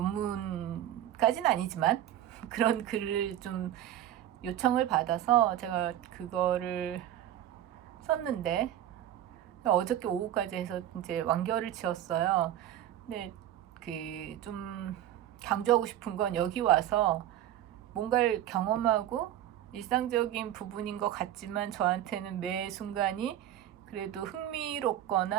아니지만 그런 글을 좀 요청을 받아서 제가 그거를 썼는데 어저께 오후까지 해서 이제 완결을 지었어요. 근데 그 좀 강조하고 싶은 건 여기 와서 뭔가를 경험하고 일상적인 부분인 것 같지만 저한테는 매 순간이 그래도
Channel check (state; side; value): quieter; left; 12.0 dB